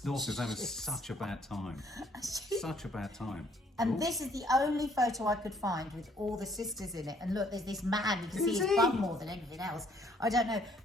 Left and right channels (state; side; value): normal; both; correlation 0.64